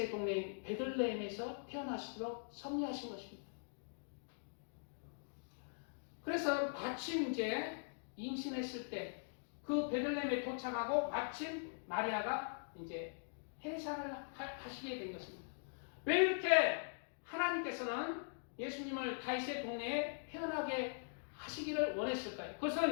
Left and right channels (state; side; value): silent; right; digital silence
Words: 동네인 베들레헴에서 태어나시도록 섭리하신 것입니다. 그래서 마침 이제 임신했을 때 그 베들레헴에 도착하고 마침 마리아가 이제 해산을 하시게 된 것입니다. 왜 이렇게 하나님께서는 예수님을 다윗의 동네에 태어나게 하시기를 원했을까요?